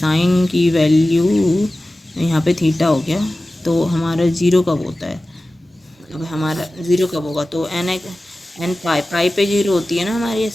की वैल्यू यहाँ पे थीटा हो गया, तो हमारा 0 कब होता है, अब हमारा 0 कब होगा, तो एन पाई पे 0 होती है ना हमारी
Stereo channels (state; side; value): normal; both; correlation 0.96